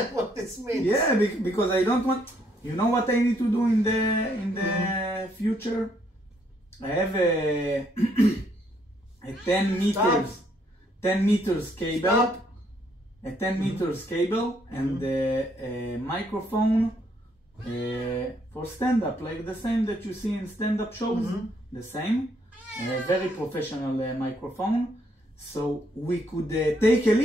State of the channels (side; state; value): both; normal; correlation 0.70